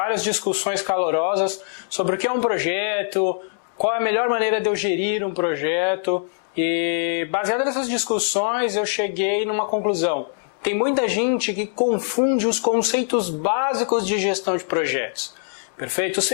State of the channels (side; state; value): right; silent; 64 dB below the other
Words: discussões calorosas sobre o que é um projeto, qual é a melhor maneira de eu gerir um projeto. E baseado nessas discussões eu cheguei numa conclusão. Tem muita gente que confunde os conceitos básicos de gestão de projetos. Perfeito?